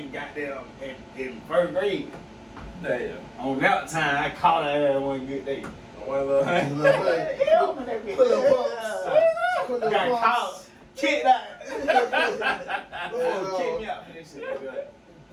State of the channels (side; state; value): both; identical; correlation 1.00